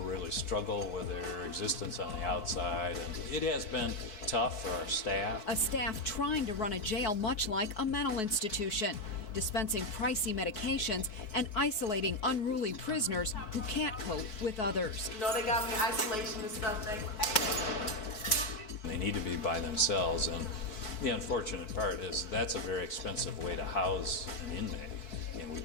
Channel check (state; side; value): late; right; 4.6 ms